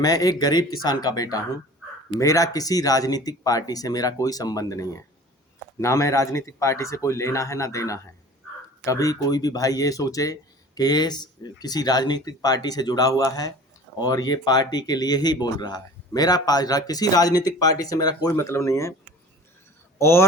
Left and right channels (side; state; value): both; normal; correlation 0.43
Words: एक गरीब किसान का बेटा हूं। मेरा किसी राजनीतिक पार्टी से मेरा कोई संबंध नहीं है। ना मैं राजनीतिक पार्टी से कोई लेना है ना देना है। कभी कोई भी भाई ये सोचे कि ये किसी राजनीतिक पार्टी से जुड़ा हुआ है और ये पार्टी के लिए ही बोल रहा है। किसी राजनीतिक पार्टी से मेरा कोई मतलब नहीं है।